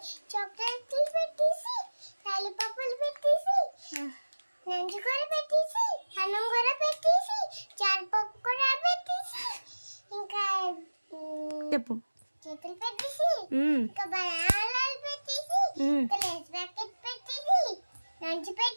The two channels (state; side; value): inverted; both; correlation -1.00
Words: చాక్లెట్లు పెట్టేసి లాలీపాపులు పెట్టేసి నంజు కూర పెట్టేసి అన్నం కూర పెట్టేసి చారుపప్పు కూర పెట్టేసి ఇంకా చెప్పు చేతులు పెట్టేసి ఇంకా బనానాలు పెట్టేసి ఇంకా లేస్ ప్యాకెట్ పెట్టేసి నంజు